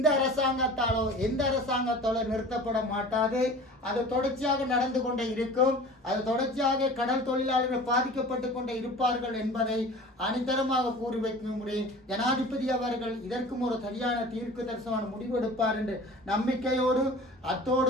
அரசாங்கத்தாலோ எந்த அரசாங்கத்தாலோ நிறுத்தப்பட மாட்டாது. அது தொடர்ச்சியாக நடந்து கொண்டே இருக்கும். அது தொடர்ச்சியாக கடல் தொழிலாளர்கள் பாதிக்கப்பட்டு கொண்டே இருப்பார்கள் என்பதை அனிதரமாக கூறி வைக்க முடியும். ஜனாதிபதி அவர்கள் இதற்கும் ஒரு சரியான தீர்க்கு தரிசனமான முடிவு எடுப்பார் என்று நம்பிக்கையோடு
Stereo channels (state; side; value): normal; both; correlation 0.41